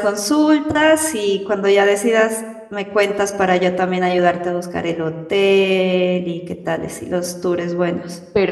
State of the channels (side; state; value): both; identical; correlation 1.00